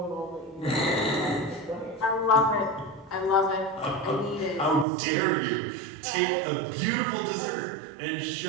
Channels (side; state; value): left; drops out; at 4.9 s